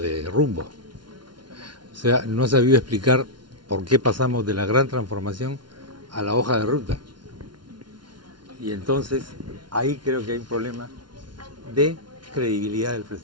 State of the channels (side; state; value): left; late; 0.71 ms